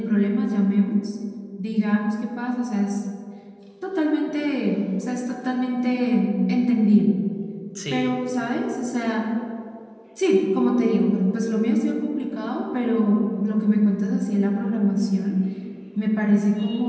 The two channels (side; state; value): both; identical; correlation 1.00